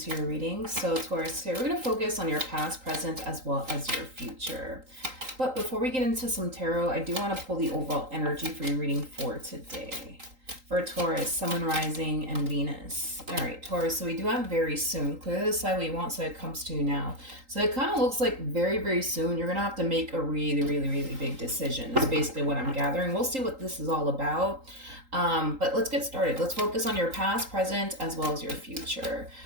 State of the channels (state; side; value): late; left; 3.8 ms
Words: your reading. So, Taurus, here we're going to focus on your past, present, as well as your future. But before we get into some tarot, I do want to pull the overall energy for your reading for today. For Taurus, Sun, Rising, and Venus. All right, Taurus, so we do have very soon. Clearly decide what you want so it comes to you now. So it kind of looks like very, very soon you're going to have to make a really, really, really big decision. That's basically what I'm gathering. We'll see what this is all about. But let's get started. Let's focus on your past, present, as well as your future.